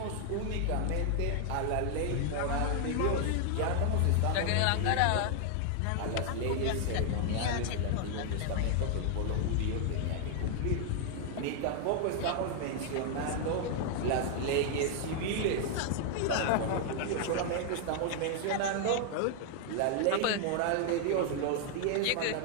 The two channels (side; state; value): both; different; correlation 0.00